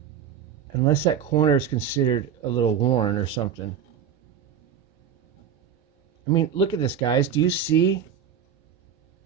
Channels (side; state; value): left; quieter; 8.2 dB